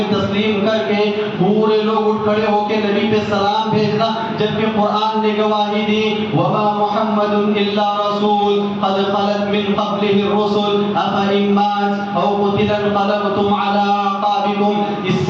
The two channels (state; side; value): identical; both; correlation 1.00